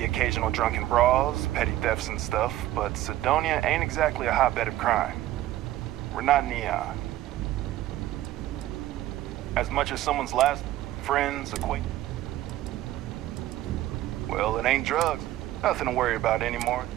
occasional drunken brawls, petty thefts and stuff, but Sidonia ain't exactly a hotbed of crime. We're not Neon. As much as someone's last friends, acquaintances. Well, it ain't drugs. Nothing to worry about anymore.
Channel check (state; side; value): quieter; left; 14.5 dB